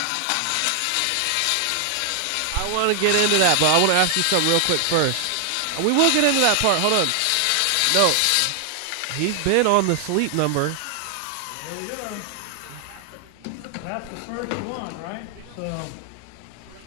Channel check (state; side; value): different; both; correlation 0.00